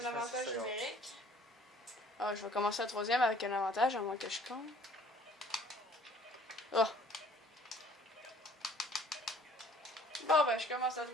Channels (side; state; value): both; normal; correlation 0.55